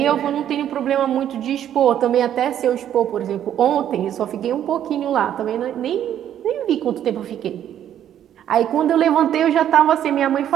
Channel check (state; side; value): quieter; left; 10.5 dB